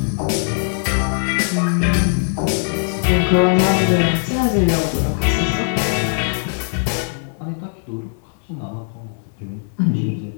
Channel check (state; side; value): silent; right; digital silence